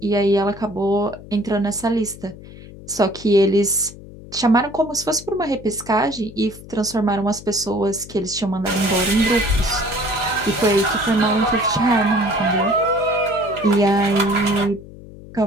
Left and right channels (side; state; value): left; noise; hum, 17 dB below the sound